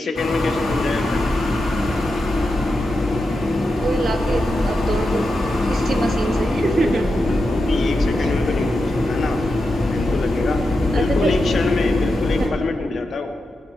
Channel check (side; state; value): both; normal; correlation 0.88